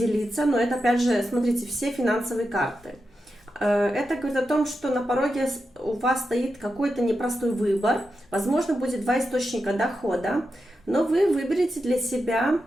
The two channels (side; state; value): both; normal; correlation 0.89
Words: но это опять же, смотрите, все финансовые карты. Это говорит о том, что на пороге у вас стоит какой-то непростой выбор. Возможно, будет два источника дохода, но вы выберете для себя